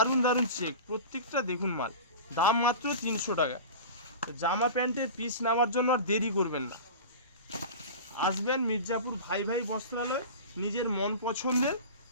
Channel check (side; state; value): both; inverted; correlation -0.32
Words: দারুণ চেক, প্রত্যেকটা দেখুন মাল। দাম মাত্র 300 টাকা। জামা প্যান্টের পিস নেওয়ার জন্য আর দেরি করবেন না, আসবেন মির্জাপুর ভাই ভাই বস্ত্রালয়, নিজের মন পছন্দের